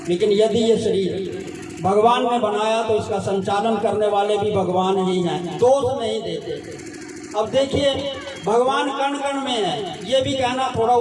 लेकिन यदि ये शरीर भगवान ने बनाया तो इसका संचालन करने वाले भी भगवान ही हैं, दोष नहीं देते। अब देखिए भगवान कण कण में है, ये भी कहना थोड़ा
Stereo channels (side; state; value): both; identical; correlation 1.00